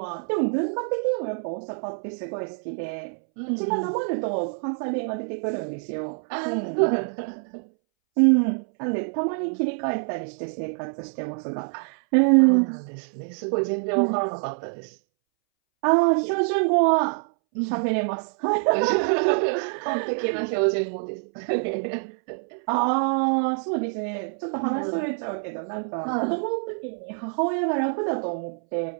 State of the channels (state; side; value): silent; left; 61 dB below the other